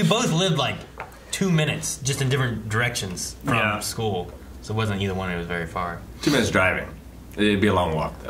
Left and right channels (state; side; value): identical; both; correlation 1.00